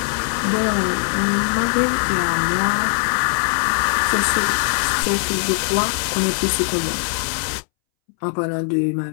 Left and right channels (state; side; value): silent; right; 65 dB below the other